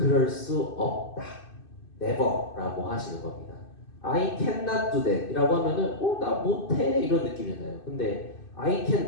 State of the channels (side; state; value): right; late; 2.6 ms